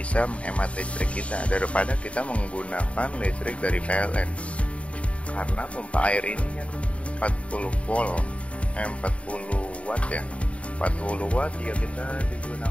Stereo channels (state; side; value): late; right; 0.064 ms